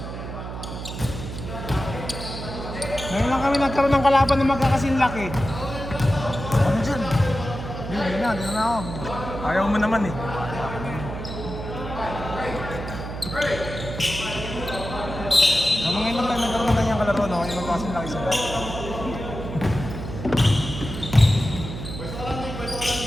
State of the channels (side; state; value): right; noise; hum, 8 dB below the sound